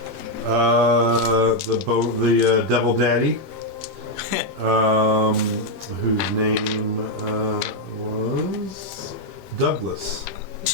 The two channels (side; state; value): left; late; 16 ms